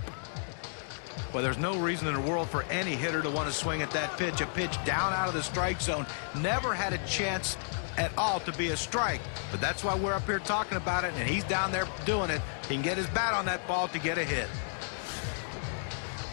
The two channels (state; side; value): silent; right; digital silence